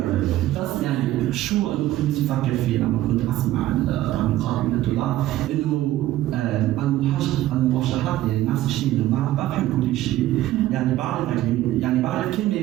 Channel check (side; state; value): left; quieter; 14.7 dB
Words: بس يعني شو انا كنت افكر فيه لما كنت اسمع المقام انه المواشحات يعني نفس الشيء، انه ما بفهم كل شيء، يعني بعرف كلمة